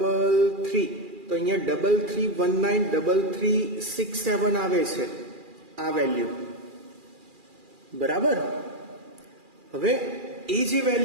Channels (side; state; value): left; late; 2.4 ms